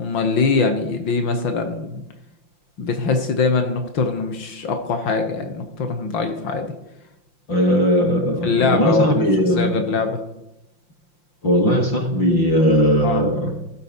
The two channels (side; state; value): right; late; 5.7 ms